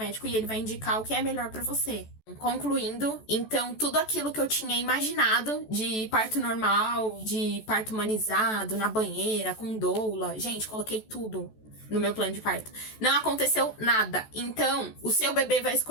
e ele vai indicar o que é melhor pra você. Concluindo, então, tudo aquilo que eu tinha imaginado de parto normal, de parto humanizado, na banheira, com doula, gente, coloquei tudo no meu plano de parto. Não aconteceu nada. Então, o seu bebê vai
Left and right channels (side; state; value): right; late; 14 ms